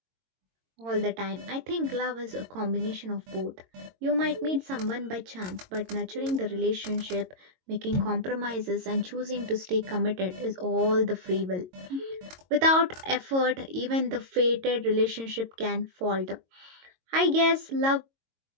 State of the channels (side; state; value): left; late; 22 ms